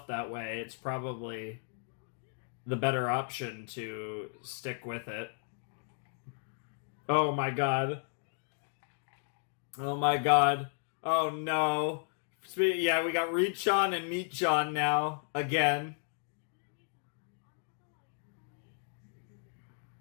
that way, it's probably the better option to stick with it. Oh my god. Oh my god. Oh no. Yeah, we got Reach-on and Meat-on now. Again.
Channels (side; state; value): right; silent; 55 dB below the other